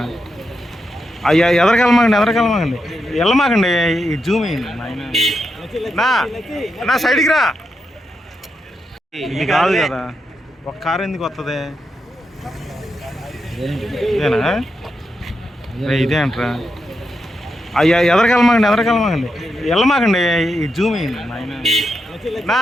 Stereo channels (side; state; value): both; normal; correlation 0.85